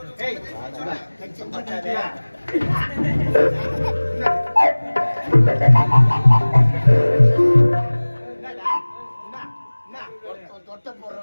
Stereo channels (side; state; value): both; inverted; correlation -1.00